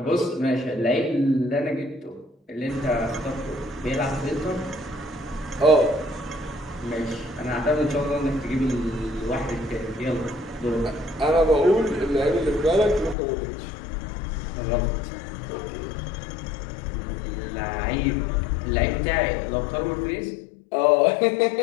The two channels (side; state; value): right; drops out; at 13.2 s